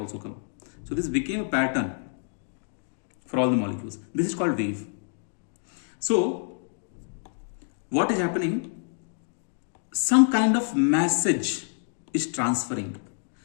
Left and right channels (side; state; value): right; silent; 56 dB below the other